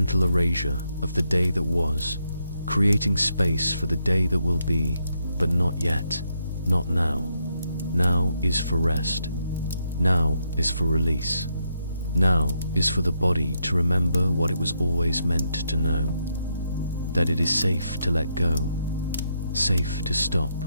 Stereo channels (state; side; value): inverted; both; correlation -0.79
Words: erasure of the day that was, creating space for the day that will be, but not yet, not now. Now is for rest. Now is for release. Now is for the body to remember what it was always meant to know, that it is safe to let go, safe to stop,